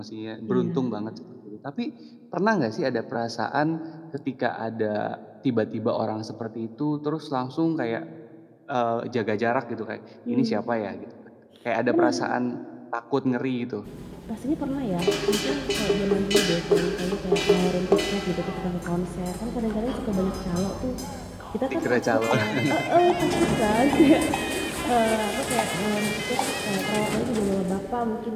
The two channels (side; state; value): both; identical; correlation 1.00